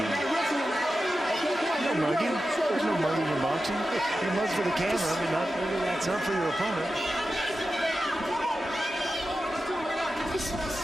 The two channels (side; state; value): both; normal; correlation 0.92